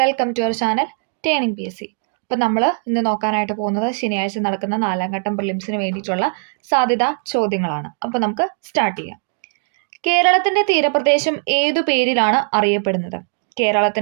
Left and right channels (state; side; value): silent; left; digital silence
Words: to our channel turning PSC. അപ്പോൾ നമ്മൾ ഇന്ന് നോക്കാനായിട്ട് പോകുന്നത് ശനിയാഴ്ച നടക്കുന്ന 4ാം ഘട്ടം പ്രിലിംസിന് വേണ്ടിയിട്ടുള്ള സാധ്യതാ ചോദ്യങ്ങളാണ്. അപ്പോൾ നമുക്ക് സ്റ്റാർട്ട് ചെയ്യാം. കേരളത്തിന്റെ തീരപ്രദേശം ഏതു പേരിലാണ് അറിയപ്പെടുന്നത്?